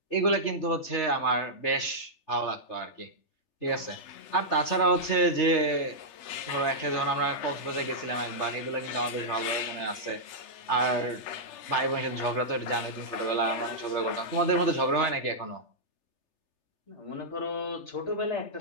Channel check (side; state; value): right; late; 3.3 ms